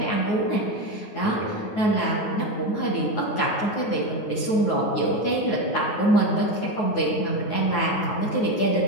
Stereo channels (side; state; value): right; late; 9.4 ms